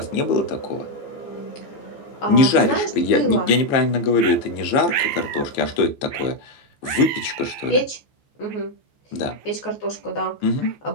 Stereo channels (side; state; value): right; late; 15 ms